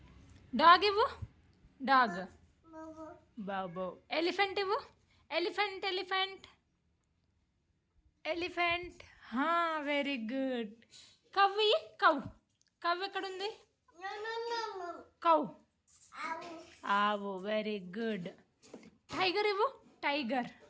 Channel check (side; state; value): both; identical; correlation 1.00